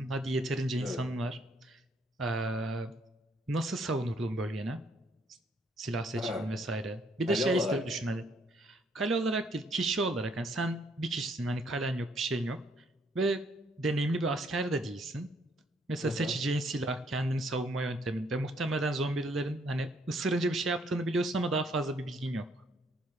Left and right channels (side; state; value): both; normal; correlation 0.68